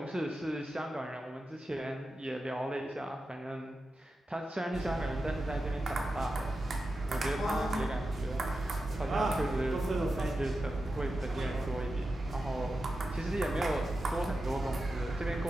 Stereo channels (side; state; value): both; normal; correlation 0.91